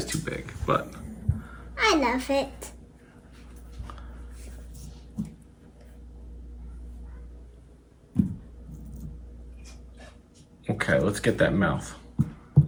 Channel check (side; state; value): both; identical; correlation 1.00